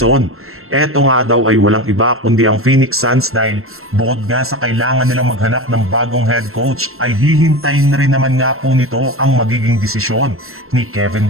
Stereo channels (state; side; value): late; left; 0.62 ms